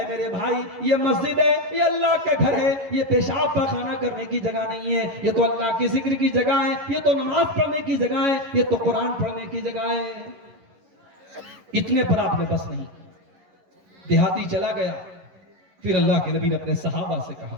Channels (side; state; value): left; late; 11 ms